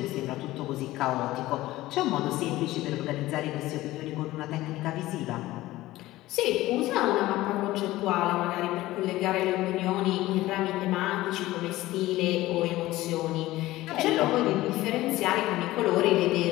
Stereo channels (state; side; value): quieter; right; 17.0 dB